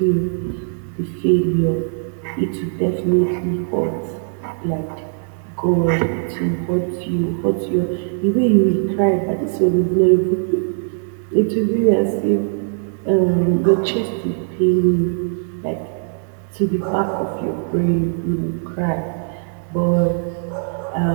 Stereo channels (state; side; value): silent; left; 66 dB below the other